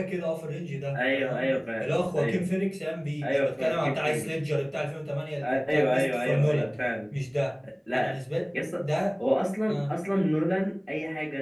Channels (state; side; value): identical; both; correlation 1.00